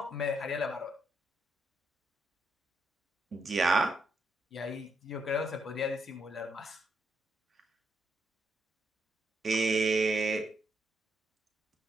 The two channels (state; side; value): normal; both; correlation 0.78